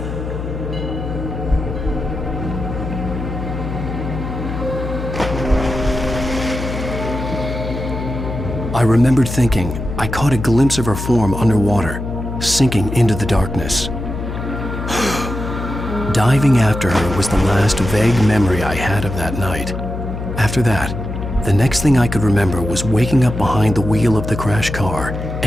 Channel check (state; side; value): noise; left; hum, 6 dB below the sound